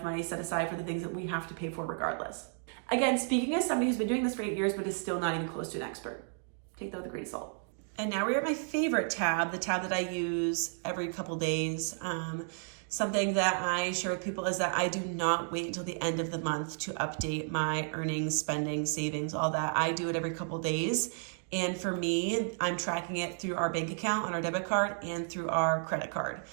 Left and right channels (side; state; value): left; silent; 56 dB below the other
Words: money set aside for the things that we have to pay for regardless. Again, speaking as somebody who's been doing this for 8 years, but is still not even close to an expert. Take that with a grain of salt. And now we're at my favorite tab, the tab that I use every couple days. Something that I share with people is that I do not wait until the end of the month to update my earnings, spending, savings, all that. I do it every couple days. And for me, I'm tracking it through our bank account on our debit card and through our credit card.